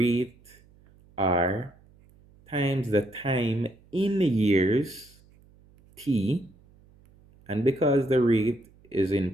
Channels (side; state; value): right; noise; hum, 28 dB below the sound